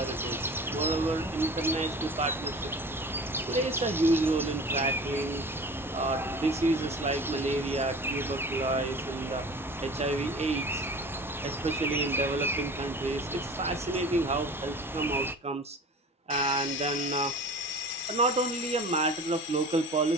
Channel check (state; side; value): normal; both; correlation 0.40